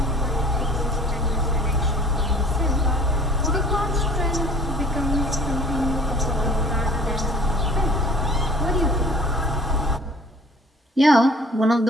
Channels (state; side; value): normal; both; correlation 0.50